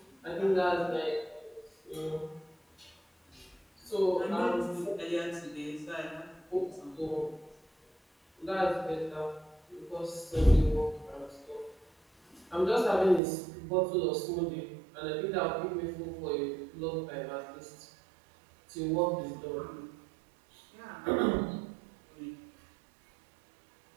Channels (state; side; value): drops out; left; at 13.2 s